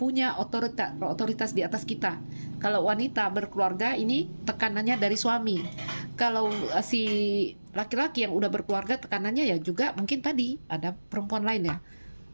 otoritas di atas kita. Kalau wanita berkeluarga ini tekanannya dari suami. Kalau si laki-laki yang udah berkeluarga tekanannya ya juga mungkin tadi ada perempuan lain ya.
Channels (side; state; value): both; inverted; correlation -1.00